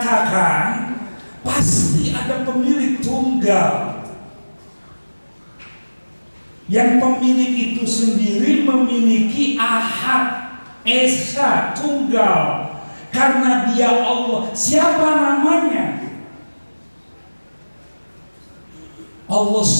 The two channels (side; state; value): both; inverted; correlation -1.00